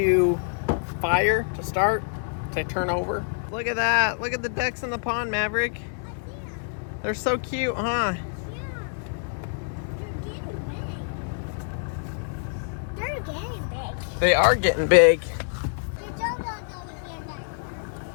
fire, to start, to turn over. Look at that. Look at the ducks in the pond, Maverick. They're so cute, huh? Yeah. They're getting big. They are getting big. The John boat's over here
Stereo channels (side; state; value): right; silent; digital silence